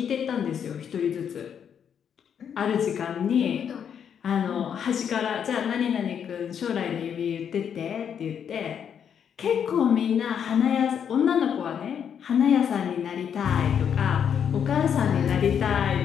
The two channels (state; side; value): quieter; right; 8.1 dB